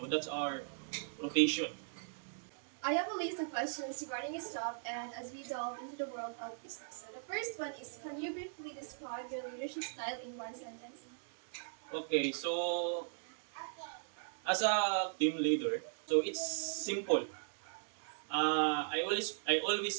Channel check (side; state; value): left; silent; digital silence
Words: that's our rotation. I have a list of questions regarding his job and as we delve into the world of business. So the first one is, can you briefly describe your leadership style in one sentence? Okay, so as a team leader, so it's simple. I